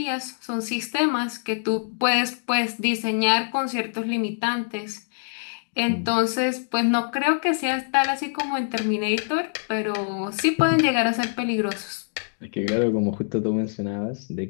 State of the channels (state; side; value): silent; right; digital silence